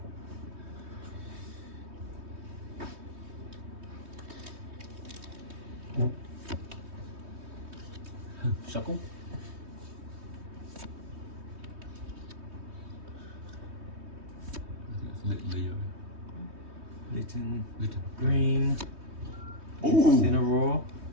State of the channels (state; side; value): late; left; 3.2 ms